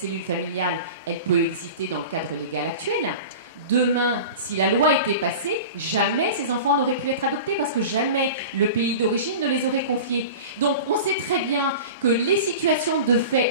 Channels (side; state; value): both; inverted; correlation -0.34